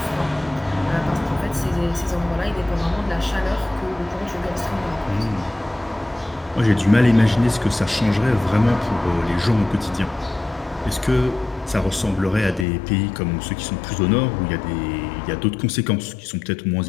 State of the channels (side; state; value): right; drops out; at 12.7 s